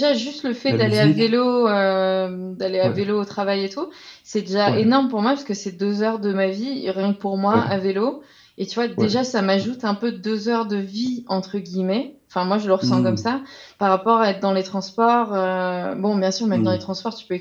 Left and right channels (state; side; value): identical; both; correlation 1.00